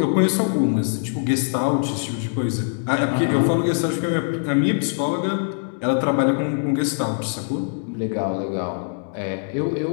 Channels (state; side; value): silent; right; digital silence